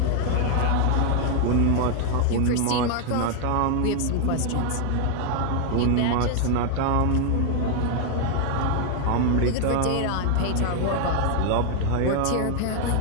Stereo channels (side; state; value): both; different; correlation 0.00